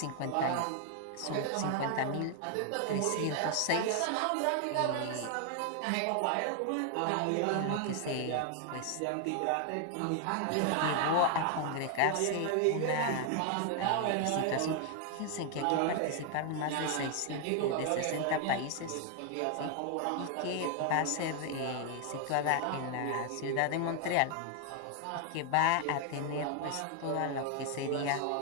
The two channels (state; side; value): different; both; correlation 0.00